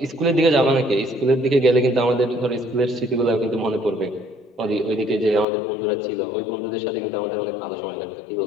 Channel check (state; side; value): drops out; right; at 5.5 s